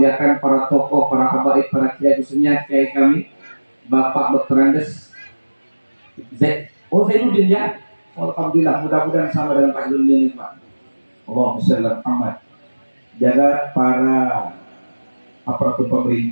para tokoh, para habaib, para kiai, khususnya kiai kami Bapak Dr. Andes Zainuddin ya. Alhamdulillah, mudah-mudahan sama dengan Pak Zainuddin Pak. Allahumma shalli ala Muhammad. Jaga para aparatur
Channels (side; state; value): both; inverted; correlation -1.00